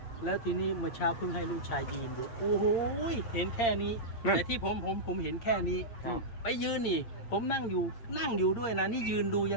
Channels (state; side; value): late; right; 8.7 ms